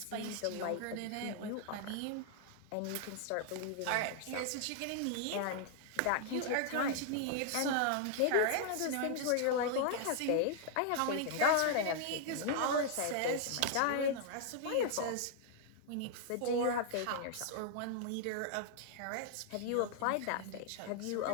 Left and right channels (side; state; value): both; different; correlation -0.01